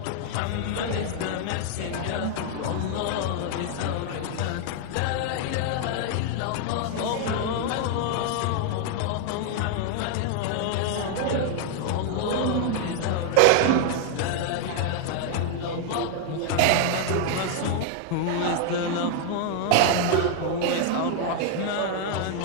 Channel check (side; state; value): both; different; correlation 0.00